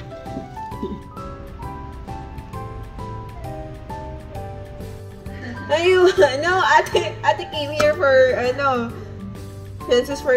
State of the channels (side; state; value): both; identical; correlation 1.00